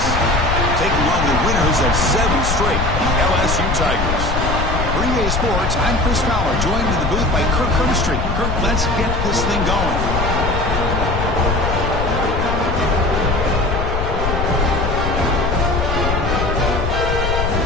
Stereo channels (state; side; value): noise; left; rumble, 2 dB below the sound